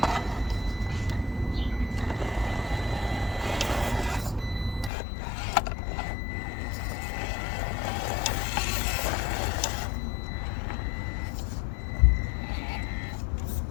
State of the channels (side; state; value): right; drops out; at 4.9 s